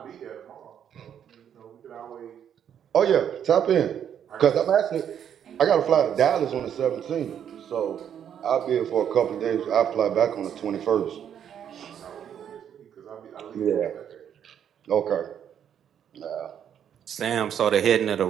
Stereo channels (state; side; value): quieter; left; 9.0 dB